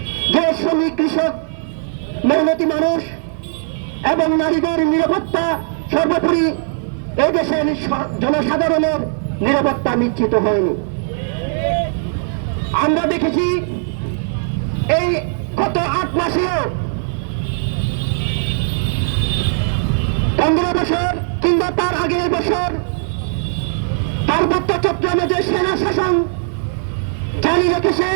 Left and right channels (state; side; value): silent; left; 57 dB below the other